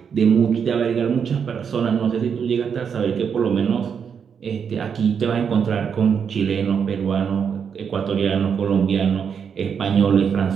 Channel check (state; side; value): quieter; left; 7.0 dB